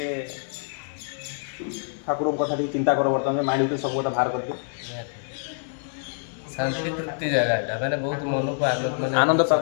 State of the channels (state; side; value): silent; right; digital silence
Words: ठाकुर कथा चिंता कर बर्तमान माइंड भीतर सब कथा बाहर कर शांति तृप्ति जगह एटा माने बहुत मन को आनंद माने आनंद